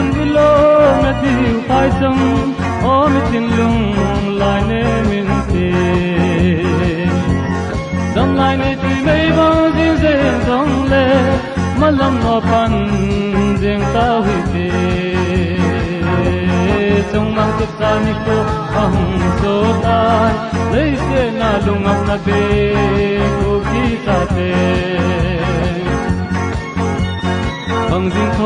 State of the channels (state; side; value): identical; both; correlation 1.00